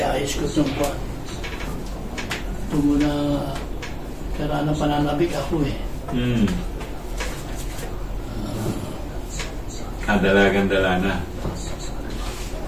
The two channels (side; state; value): both; identical; correlation 1.00